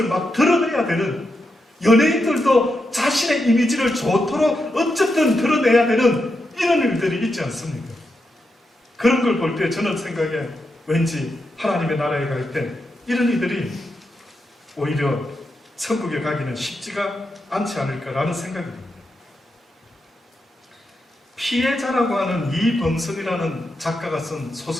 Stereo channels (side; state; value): both; normal; correlation 0.85